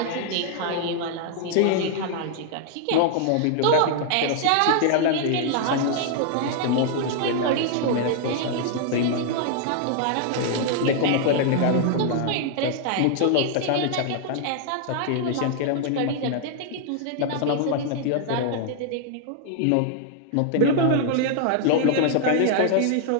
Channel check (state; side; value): different; both; correlation 0.00